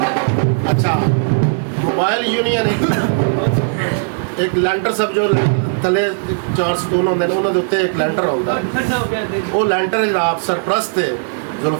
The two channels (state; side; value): silent; left; digital silence